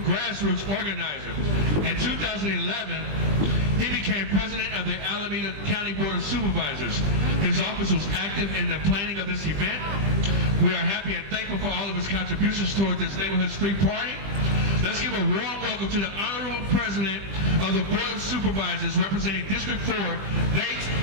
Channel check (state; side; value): late; left; 20 ms